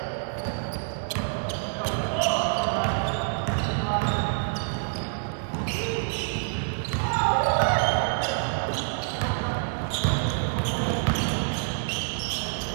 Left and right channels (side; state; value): left; silent; 57 dB below the other